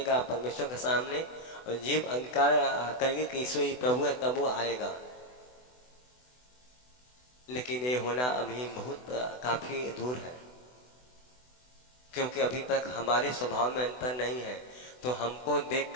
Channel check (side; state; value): right; late; 24 ms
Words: परमेश्वर के सामने और जीव अंगीकार करेगी कि यीशु ही प्रभु है, तब वो आएगा। लेकिन ये होना अभी बहुत काफी दूर है, क्योंकि अभी तक हमारे स्वभाव में अंतर नहीं है। तो हमको